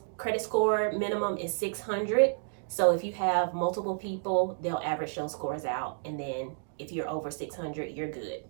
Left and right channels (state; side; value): silent; left; digital silence